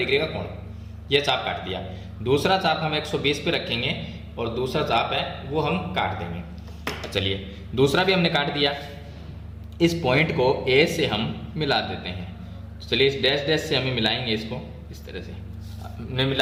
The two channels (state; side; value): identical; both; correlation 1.00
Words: का कोण। ये चाप काट दिया। दूसरा चाप हम 120 पे रखेंगे और दूसरा चाप है वो हम काट देंगे। चलिए दूसरा भी हमने काट दिया। इस पॉइंट को ए से हम मिला देते हैं। तो चलिए इस डैश डैश से हमें मिलाएंगे इसको, इस तरह से हमने